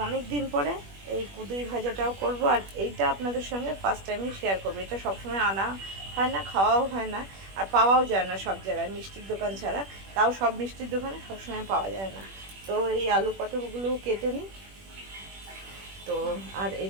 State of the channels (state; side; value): late; left; 21 ms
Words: অনেক দিন পরে এই কুঁদুরি ভাজাটাও করব। আর এইটা আপনাদের সঙ্গে ফার্স্ট টাইমই শেয়ার করব। এটা সবসময় আনা হয় না, খাওয়াও হয় না, আর পাওয়াও যায় না সব জায়গায় মিষ্টির দোকান ছাড়া। তাও সব মিষ্টির দোকানে সবসময় পাওয়া যায় না। তো এই আলু পটলগুলোও কেটে নিই। তো আর